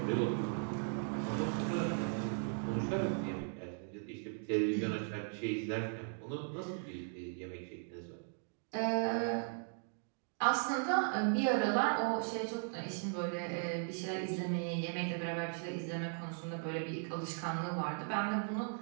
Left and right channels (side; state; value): left; silent; 53 dB below the other